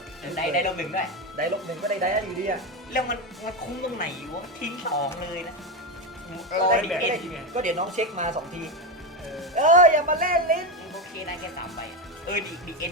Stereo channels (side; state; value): both; normal; correlation 0.13